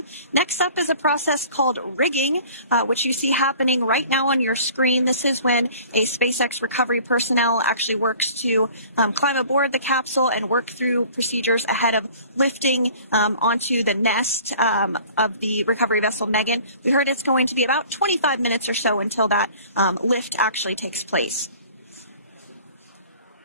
Next up is a process called rigging, which you see happening right now on your screen. This is when a SpaceX recovery personnel actually works to climb aboard the capsule and work through procedures ahead of lifting onto the nest of the recovery vessel Megan. We heard it's going to be about 25 minutes or so until that lift actually takes place.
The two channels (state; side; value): inverted; both; correlation -0.48